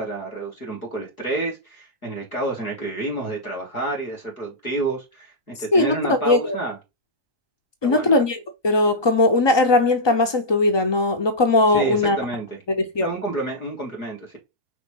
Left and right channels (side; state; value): right; late; 1.2 ms